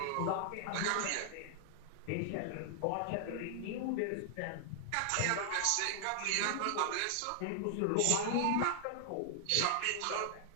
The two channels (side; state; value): both; different; correlation 0.00